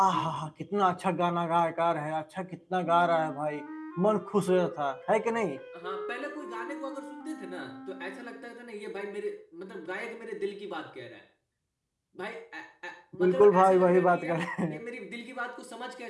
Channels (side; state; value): both; identical; correlation 1.00